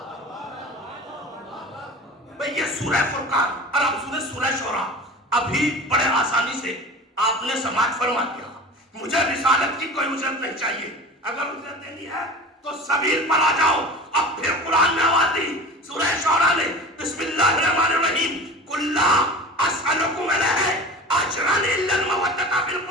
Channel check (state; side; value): normal; both; correlation 0.36